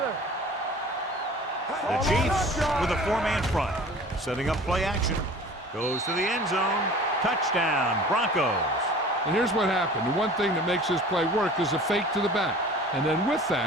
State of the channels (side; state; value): both; normal; correlation 0.44